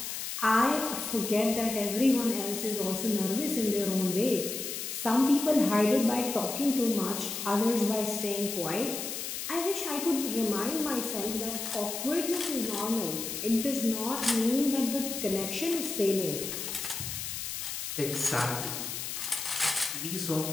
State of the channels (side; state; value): left; noise; hiss, 5 dB below the sound